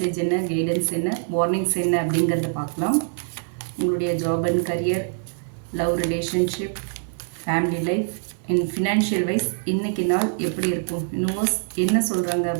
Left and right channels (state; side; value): silent; left; digital silence